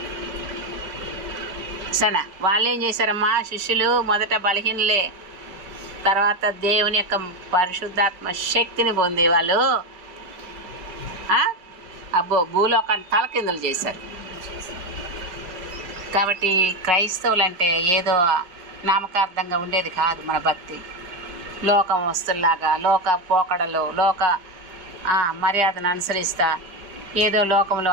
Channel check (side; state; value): left; late; 5.1 ms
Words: సరేనా, వాళ్ళు ఏం చేశారమ్మా? శిష్యులు మొదట బలహీనలే, తర్వాత దేవుని యొక్క పరిశుద్ధాత్మ శక్తిని పొంది వాళ్ళు భూలోకాన్ని తలకిందులు చేశారు. కాబట్టి క్రైస్తవులు అంటే ఏదో నామకార్థంగా ఉండేది కాదు మన భక్తి. లోకం వస్తుల్లాగా, లోక పోకడలు, లోక మర్యాదను అనుసరిస్తా ఏదో లోకంలో